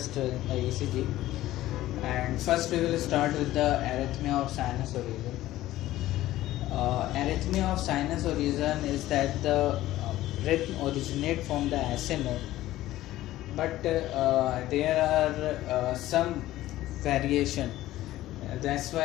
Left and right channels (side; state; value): right; quieter; 15.3 dB